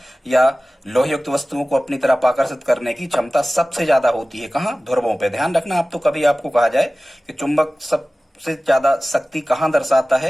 या लोहयुक्त वस्तुओं को अपनी तरफ आकर्षित करने की क्षमता सबसे ज्यादा होती है। कहाँ? ध्रुवों पे। ध्यान रखना, आप तो कभी आपको कहा जाए कि चुंबक सबसे ज्यादा शक्ति कहाँ दर्शाता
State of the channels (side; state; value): both; normal; correlation 0.97